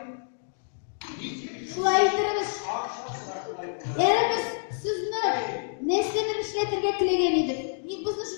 Şulay yitirimiz. Erimiz sizni neslenin işletirge tilegen edik. Bizni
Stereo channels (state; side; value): silent; right; digital silence